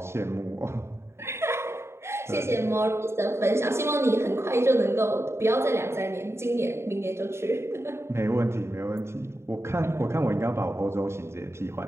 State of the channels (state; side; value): late; left; 0.13 ms